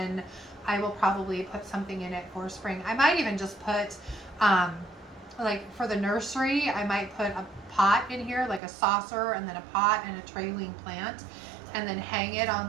I will probably put something in it for spring. I might even just put, like for the nursery, I might put a pot in here, like a saucer, and then a pot and a trailing plant, and then hang it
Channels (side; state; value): left; drops out; at 8.6 s